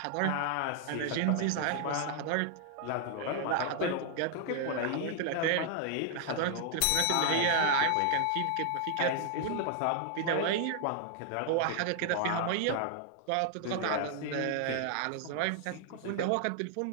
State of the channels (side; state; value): both; different; correlation 0.00